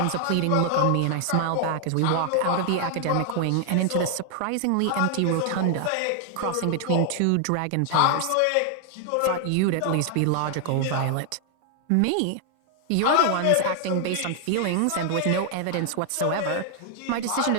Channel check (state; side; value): different; both; correlation 0.00